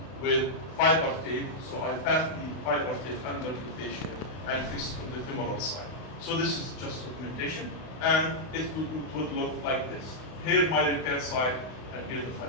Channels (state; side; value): late; right; 32 ms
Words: with fiber tape. So I pass the fiber tape under the fascia and fix on the femoral side. So this is just augmentation, and it would look like this. Here my repair side, and here the